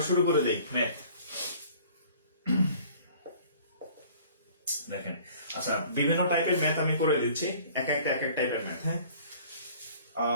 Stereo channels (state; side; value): inverted; both; correlation -0.51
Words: শুরু করে দেই ম্যাথ। দেখেন, আচ্ছা, বিভিন্ন টাইপের ম্যাথ আমি করে দিচ্ছি, এক এক টাইপের ম্যাথ, হ্যাঁ।